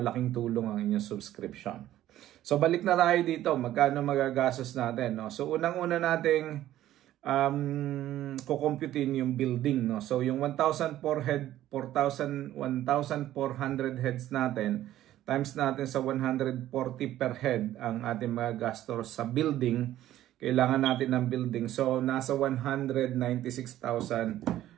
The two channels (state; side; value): quieter; left; 13.4 dB